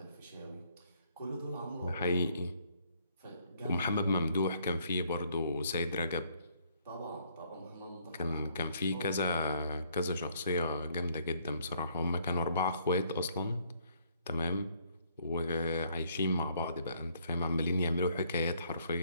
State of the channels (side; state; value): both; inverted; correlation -0.67